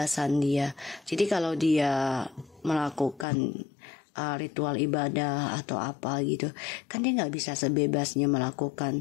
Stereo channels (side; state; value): right; drops out; at 3.2 s